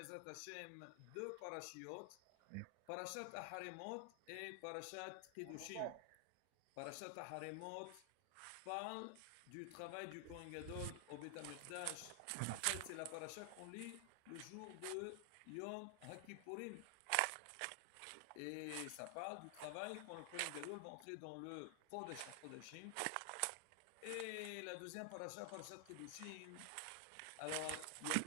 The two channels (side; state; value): both; different; correlation 0.00